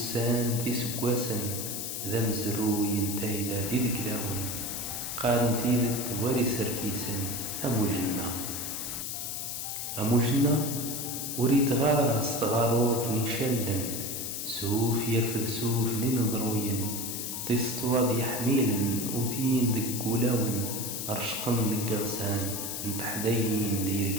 ذي سقواسن ذا مزرو ينتهي ذي ذكلاون قارن تيذ تواري سركيسن أمو جنة وريت غادر استغارور ثني شلن سوف يرفذ سوف لنظروين تستواض يحميلن وثين ذك ولاون أرشقن ذك غسان نتحدين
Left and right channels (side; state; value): left; noise; hiss, 4 dB below the sound